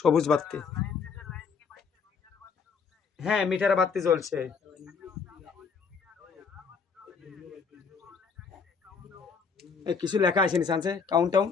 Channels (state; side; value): quieter; right; 5.5 dB